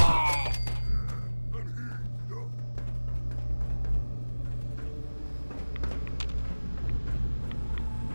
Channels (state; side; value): inverted; both; correlation -1.00